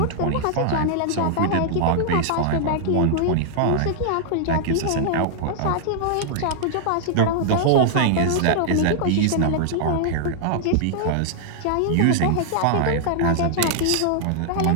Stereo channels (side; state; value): both; different; correlation -0.01